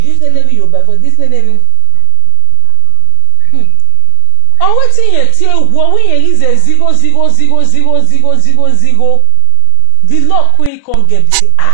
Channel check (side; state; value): both; different; correlation 0.00